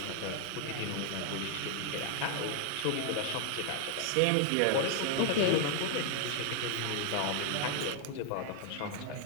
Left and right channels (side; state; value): both; different; correlation 0.00